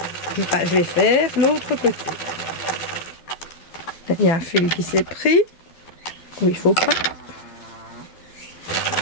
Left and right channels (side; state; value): right; late; 12 ms